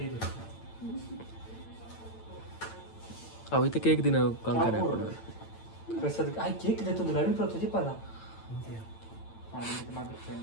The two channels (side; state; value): right; late; 8.9 ms